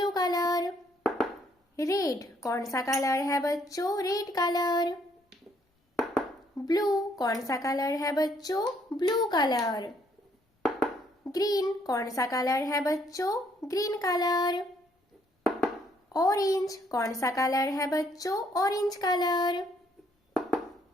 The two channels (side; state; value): both; normal; correlation 0.68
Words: colour. रेड कौन सा कलर है बच्चों? Red colour. ब्लू कौन सा कलर है बच्चों? Blue colour. ग्रीन कौन सा कलर है बच्चों? Green colour. ऑरेंज कौन सा कलर है बच्चों? Orange colour.